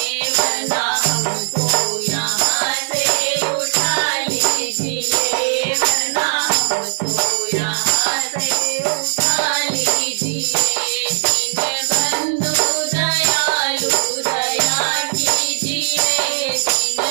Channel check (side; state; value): left; silent; digital silence